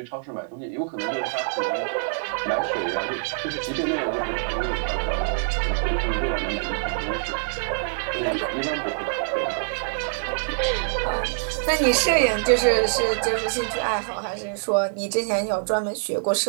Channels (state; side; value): silent; left; digital silence